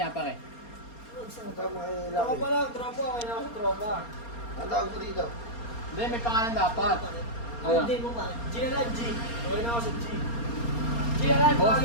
pare. Ang tama ay Ako laki. pa lang, tropa. Okay na ako sa tropa. Ang tawag mo dito? Hindi, may pangalan dapat. Ano? Hindi mo ba? G na lang, G. Okay na ako sa G. G na lang, Boss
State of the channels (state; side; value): late; right; 4.3 ms